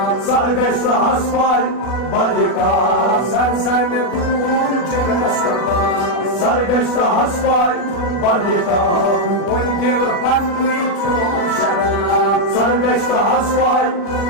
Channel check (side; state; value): right; late; 40 ms